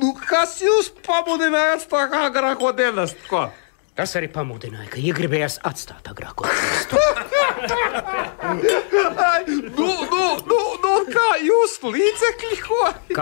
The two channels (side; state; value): right; silent; digital silence